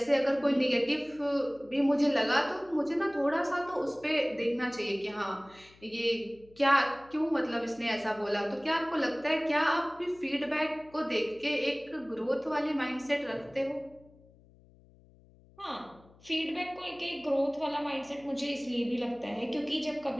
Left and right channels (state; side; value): noise; left; hum, 27 dB below the sound